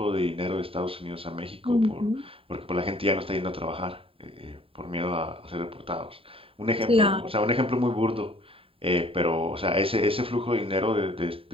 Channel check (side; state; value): left; late; 0.27 ms